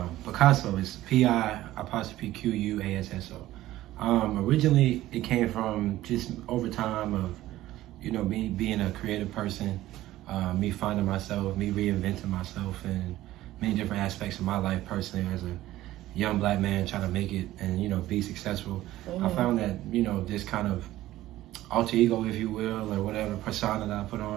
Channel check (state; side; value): quieter; left; 15.3 dB